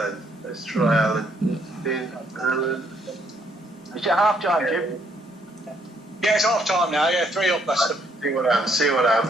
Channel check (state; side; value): normal; both; correlation 0.69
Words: Let's try Alan. Alan. Is it half time, Jim? Yeah, it's half time now. Yeah, 3-up, Leicester. See what